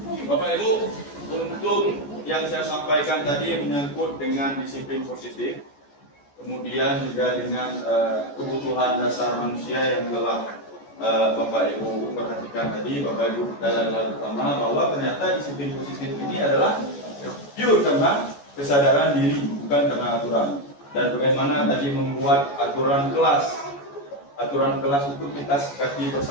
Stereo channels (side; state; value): right; late; 14 ms